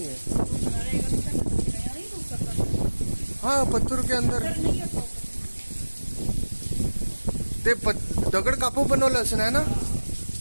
है। तो बनाना एक घंटा का नया नहीं हो सकता। हाँ, पत्थर के अंदर सर नहीं होता। ते दगड कापू बनवलं असं आहे ना।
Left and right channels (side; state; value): both; inverted; correlation -1.00